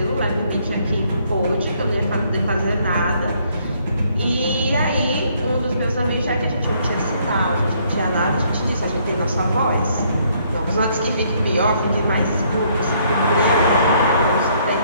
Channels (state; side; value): inverted; both; correlation -0.67